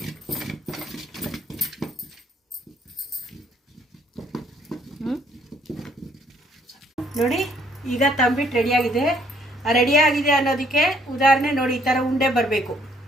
ನೋಡಿ, ಈಗ ತಂಬಿಟ್ಟು ರೆಡಿಯಾಗಿದೆ. ಅನ್ನೋದಕ್ಕೆ ಉದಾಹರಣೆ ನೋಡಿ, ಈ ಥರ ಉಂಡೆ ಬರಬೇಕು.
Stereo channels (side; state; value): both; normal; correlation 0.66